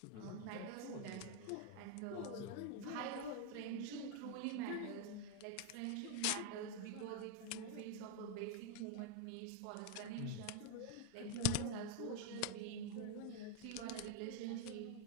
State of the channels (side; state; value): both; different; correlation 0.01